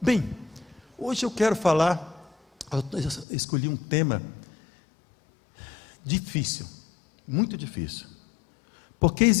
Bem, hoje eu quero falar, eu escolhi um tema difícil, muito difícil. Porque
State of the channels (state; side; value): drops out; right; at 3.2 s